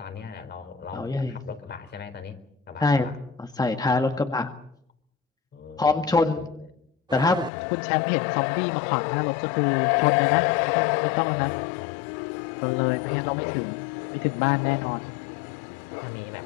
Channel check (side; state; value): right; drops out; at 7.5 s